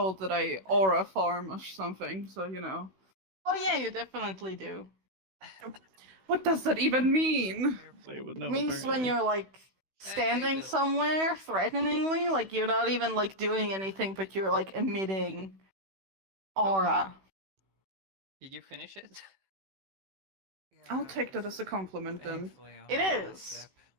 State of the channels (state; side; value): late; left; 16 ms